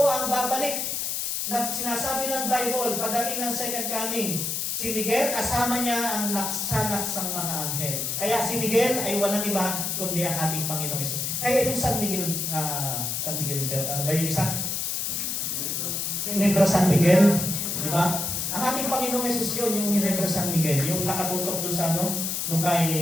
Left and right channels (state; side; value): noise; left; hiss, 1 dB below the sound